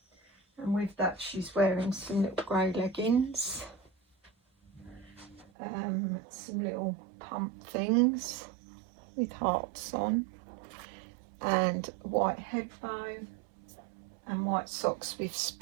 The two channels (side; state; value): left; drops out; at 5.5 s